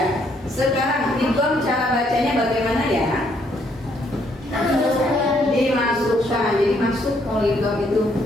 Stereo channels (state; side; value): normal; both; correlation 0.70